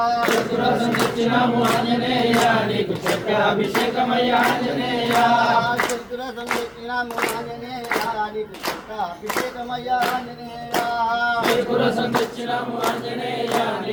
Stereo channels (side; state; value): both; identical; correlation 1.00